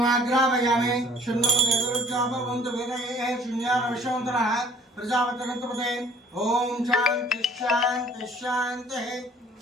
శున్నో దేవరుద్రాభవంతు వేదయే శూన్యాన విశ్వంతరః ప్రజాపతిరంతపదే ఓం శాంతి శాంతి శాంతి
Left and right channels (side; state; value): both; normal; correlation 0.53